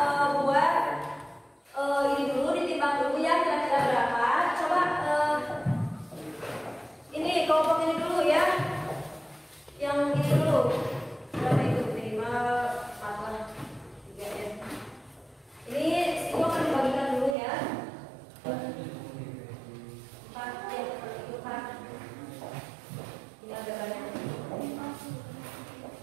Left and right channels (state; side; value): drops out; left; at 17.4 s